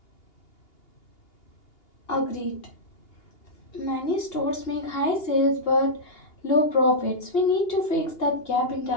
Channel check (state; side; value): late; right; 2.8 ms